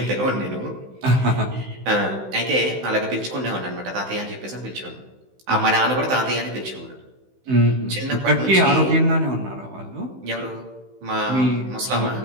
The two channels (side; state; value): left; late; 16 ms